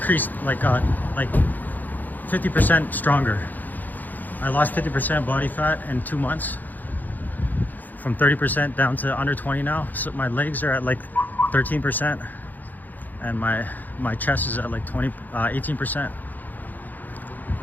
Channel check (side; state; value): right; late; 0.084 ms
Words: like 50% stronger. I lost 50% body fat in 2 months, from 30% down to under 20 now. So my legs are at like 13%, and my chest is at like 18%.